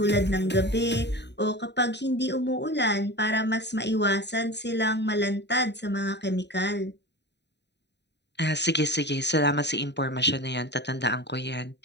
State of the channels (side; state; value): right; late; 0.50 ms